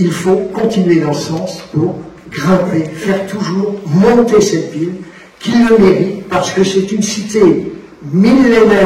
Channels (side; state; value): both; identical; correlation 1.00